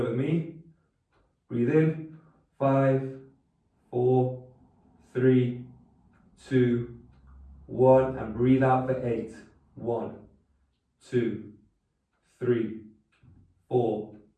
with me. Breathe in. 5, 4, 3, 2, 1. And breathe out for 8. 1, 2, 3, 4,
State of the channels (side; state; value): both; identical; correlation 1.00